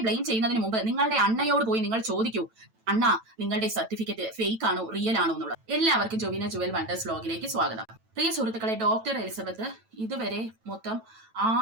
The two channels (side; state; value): left; late; 9.0 ms